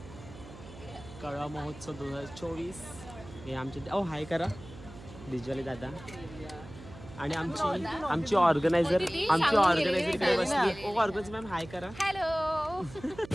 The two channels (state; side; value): noise; right; hum, 17 dB below the sound